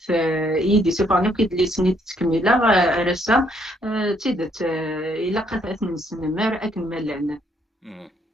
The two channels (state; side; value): normal; both; correlation 0.69